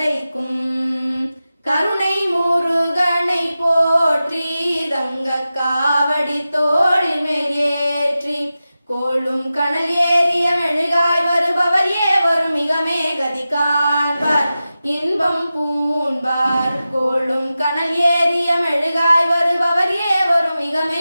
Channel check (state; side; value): inverted; both; correlation -0.93